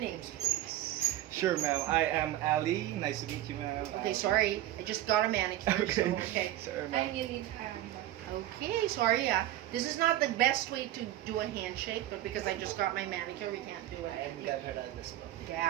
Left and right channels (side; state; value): left; quieter; 13.9 dB